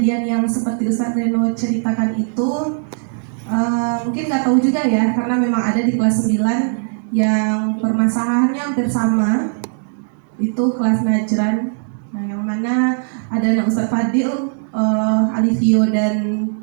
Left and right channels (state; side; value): silent; left; 64 dB below the other